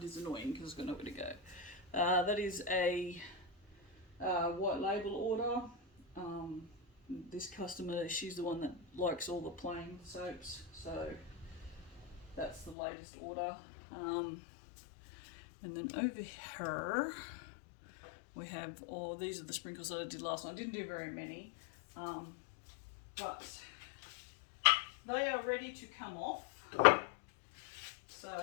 is annoying because I've got nowhere to go. That is a white label order. This customer, she's the one that likes all the plain soaps, so that's the latest order. And then over here we have these are the sprinkles that I did last night. I didn't do very many, but they are ready to come off.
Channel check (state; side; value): drops out; right; at 12.8 s